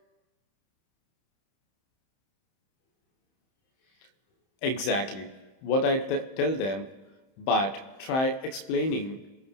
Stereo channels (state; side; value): late; right; 31 ms